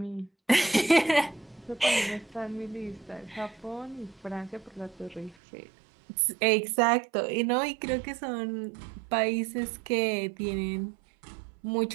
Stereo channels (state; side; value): drops out; left; at 5.4 s